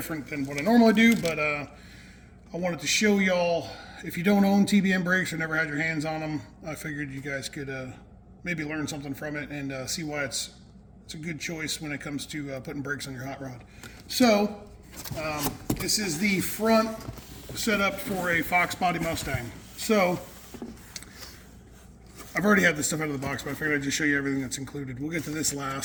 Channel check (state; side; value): identical; both; correlation 1.00